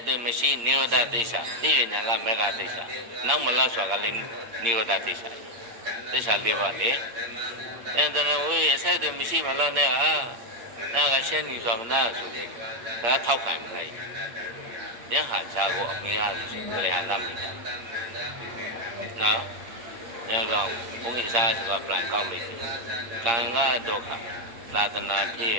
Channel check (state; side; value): late; left; 8.6 ms